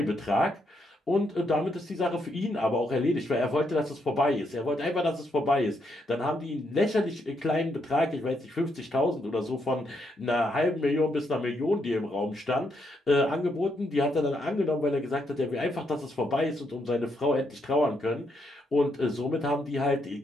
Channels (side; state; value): both; normal; correlation 0.77